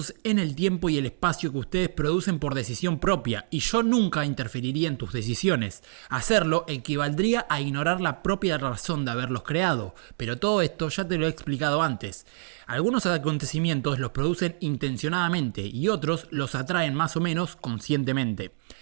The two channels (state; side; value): silent; left; digital silence